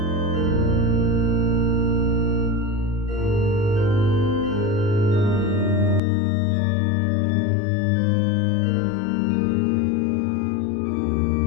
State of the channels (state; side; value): drops out; right; at 6.0 s